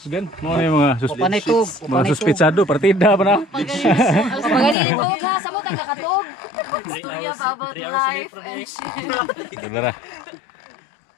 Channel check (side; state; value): right; drops out; at 4.8 s